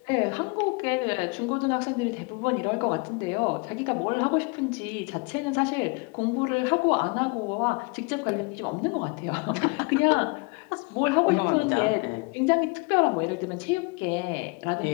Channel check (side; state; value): right; quieter; 30.0 dB